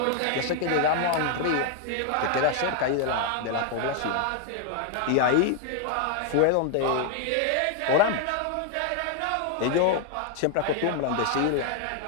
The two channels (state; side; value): different; both; correlation 0.00